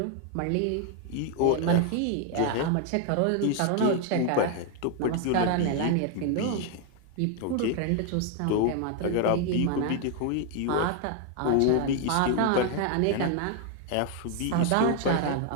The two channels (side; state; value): both; different; correlation 0.00